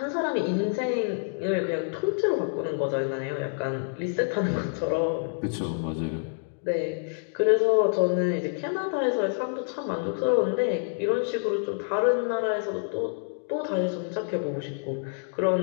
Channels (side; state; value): right; silent; 60 dB below the other